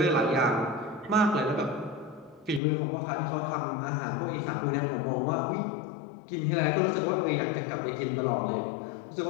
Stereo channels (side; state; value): right; drops out; at 2.6 s